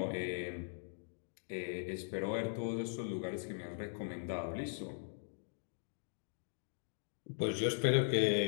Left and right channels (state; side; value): silent; right; digital silence